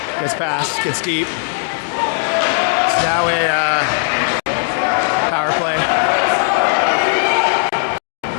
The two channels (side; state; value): right; silent; 61 dB below the other